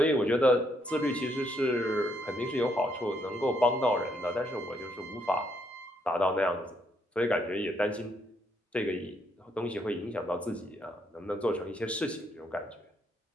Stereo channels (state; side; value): normal; both; correlation 0.73